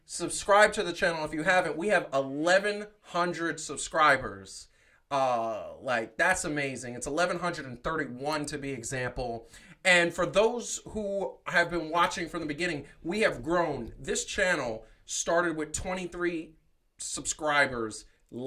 Subscribe to the channel if you haven't. We have 1,100 subscribers. That's amazing. It's 1,131 to be example. And for those who have been watching from the beginning, we have grown. This channel started with 23 subscribers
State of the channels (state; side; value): identical; both; correlation 1.00